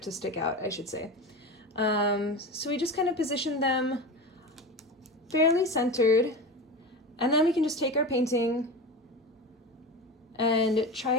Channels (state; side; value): normal; both; correlation 0.27